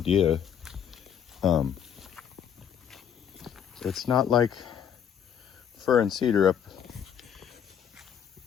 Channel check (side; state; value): right; quieter; 8.5 dB